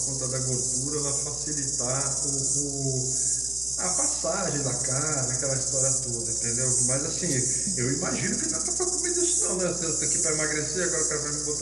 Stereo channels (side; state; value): right; noise; hum, 15 dB below the sound